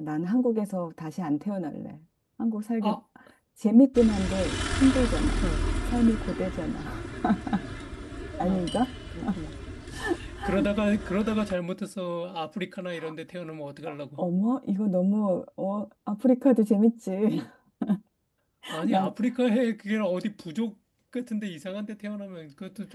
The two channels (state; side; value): identical; both; correlation 1.00